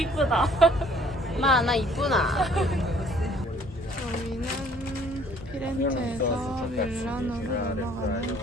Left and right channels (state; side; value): normal; both; correlation 0.58